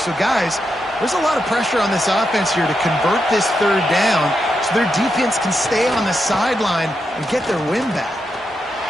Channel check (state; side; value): normal; both; correlation 0.84